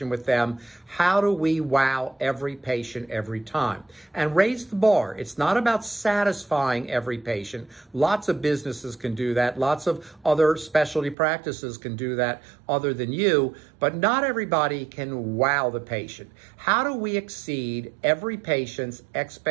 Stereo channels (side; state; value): left; drops out; at 11.2 s